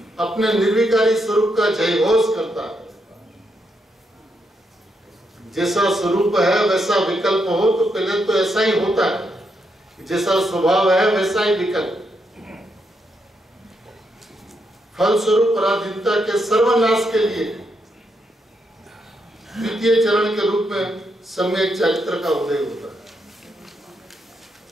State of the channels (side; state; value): both; normal; correlation 0.80